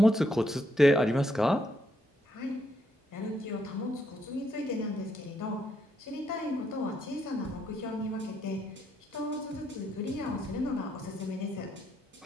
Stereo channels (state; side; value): normal; both; correlation 0.76